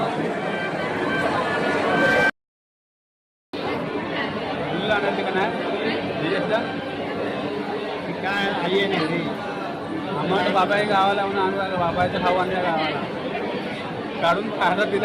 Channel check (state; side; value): identical; both; correlation 1.00